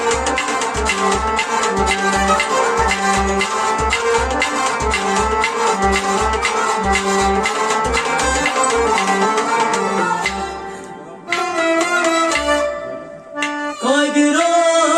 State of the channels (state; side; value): identical; both; correlation 1.00